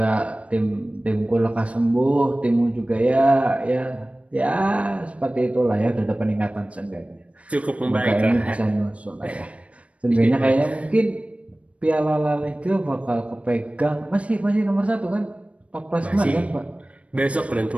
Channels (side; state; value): left; late; 0.064 ms